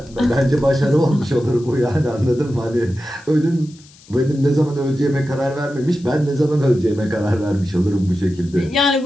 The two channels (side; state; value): left; noise; hiss, 25 dB below the sound